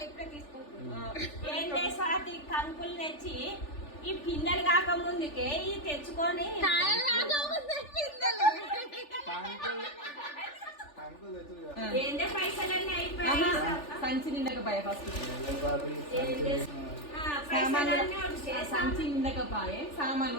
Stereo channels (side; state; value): right; late; 3.4 ms